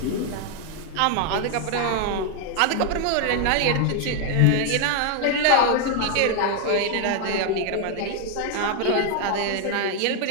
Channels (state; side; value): different; both; correlation 0.00